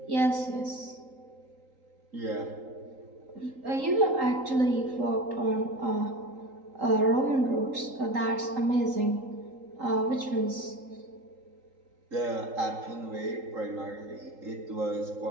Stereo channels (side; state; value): left; late; 3.8 ms